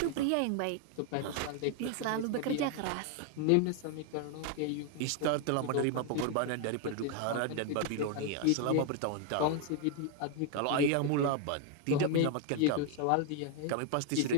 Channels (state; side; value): different; both; correlation 0.00